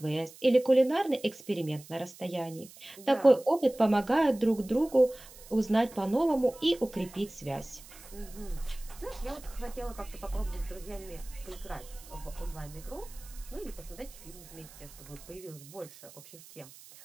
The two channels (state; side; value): noise; right; hiss, 19 dB below the sound